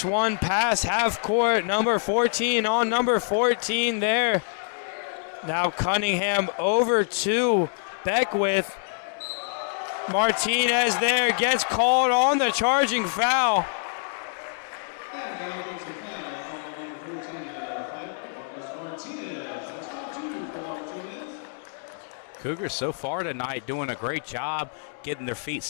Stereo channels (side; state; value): right; silent; digital silence